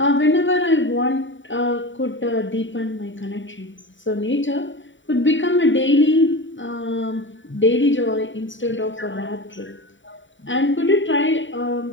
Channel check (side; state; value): right; late; 0.55 ms